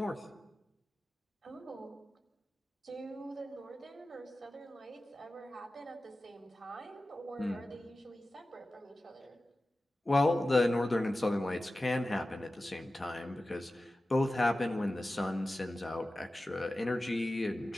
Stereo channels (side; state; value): both; normal; correlation 0.95